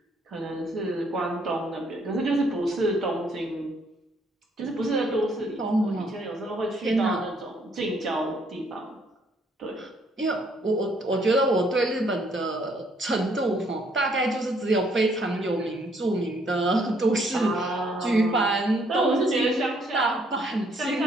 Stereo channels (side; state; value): both; normal; correlation 0.67